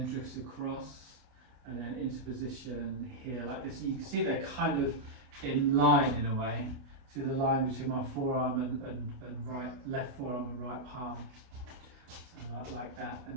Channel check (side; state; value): left; late; 28 ms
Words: drifts across, and then into position here like this. You can see they're kind of in line in a way. See the line between my forearm and left forearm and right palm. So like that, and